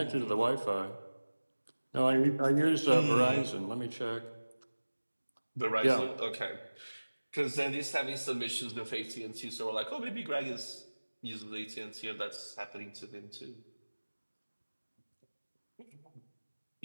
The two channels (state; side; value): inverted; both; correlation -1.00